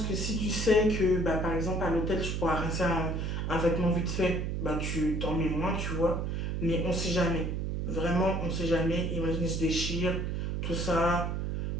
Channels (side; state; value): right; noise; hum, 1 dB below the sound